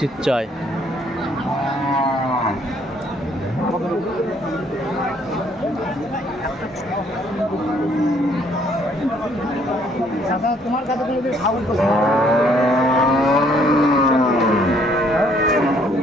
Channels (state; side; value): normal; both; correlation 0.65